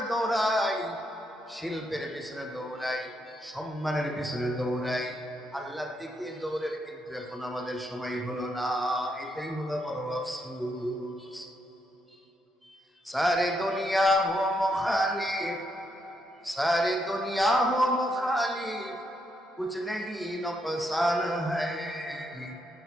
দৌড়াই, শিল্পের পিছনে দৌড়াই, সম্মানের পিছনে দৌড়াই, আল্লাহর দিকে দৌড়ের কিন্তু এখন আমাদের সময় হলো না। এটাই হলো বড় আফসোস। সারে দুনিয়া হো মুখালিফ, सारी दुनिया हो मुखालिफ, कुछ नहीं नुकसान है,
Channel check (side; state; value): both; normal; correlation 0.78